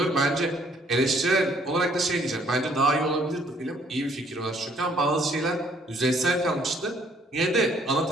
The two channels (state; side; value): normal; both; correlation 0.64